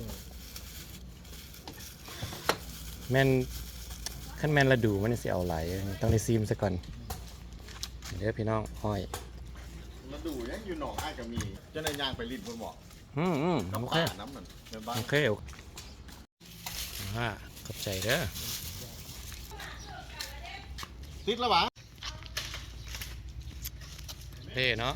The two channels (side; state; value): both; identical; correlation 1.00